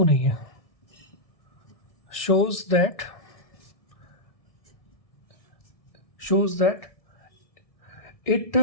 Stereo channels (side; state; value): right; late; 1.6 ms